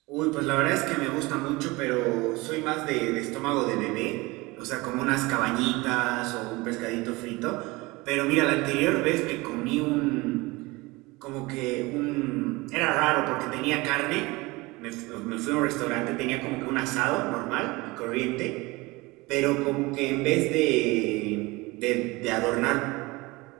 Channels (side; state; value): left; quieter; 22.9 dB